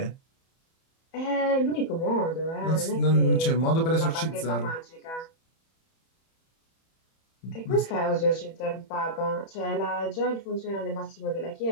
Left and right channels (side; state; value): right; late; 31 ms